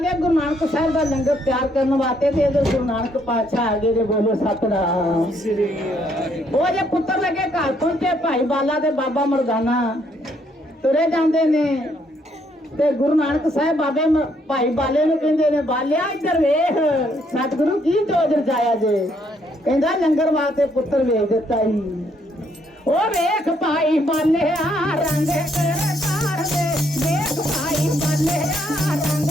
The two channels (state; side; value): normal; both; correlation 0.71